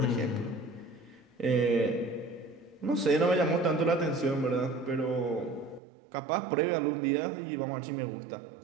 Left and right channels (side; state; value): left; drops out; at 5.8 s